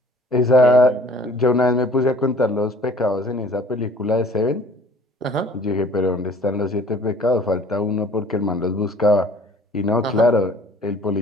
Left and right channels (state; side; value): normal; both; correlation 0.52